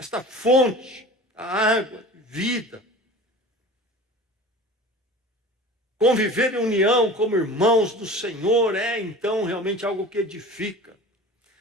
fonte, a água, vida. Conviver em união como irmãos do Senhor é então realmente algo que edifica.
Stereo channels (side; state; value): both; normal; correlation 0.38